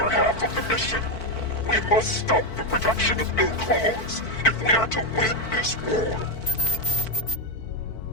half of the mission. We must stop the production of new clones if we are to win this war.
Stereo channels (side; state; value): right; late; 4.5 ms